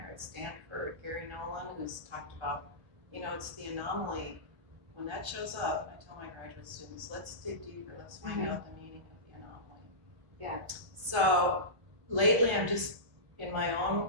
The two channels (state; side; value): late; left; 1.3 ms